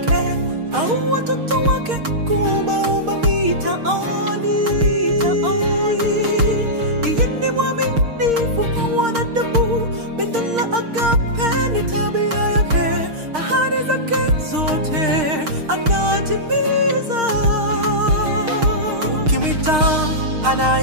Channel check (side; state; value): left; late; 6.5 ms